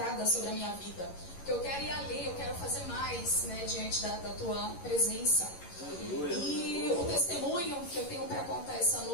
sobre a minha vida, porque eu quero ir além, eu quero fazer mais, né, diante da tua presença. E o testemunho que eu tenho para contar essa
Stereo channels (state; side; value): late; right; 11 ms